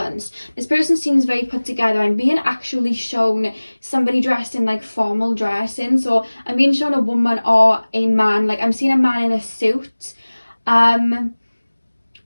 This person seems very put together. I'm being actually shown somebody dressed in like formal dressing. So I'm being shown a woman or a man. Like I'm seeing a man in a suit.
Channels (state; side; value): inverted; both; correlation -1.00